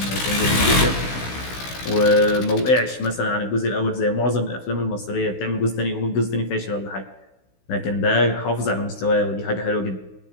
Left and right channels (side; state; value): right; late; 16 ms